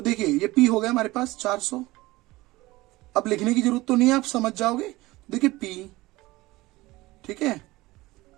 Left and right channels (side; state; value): left; quieter; 19.7 dB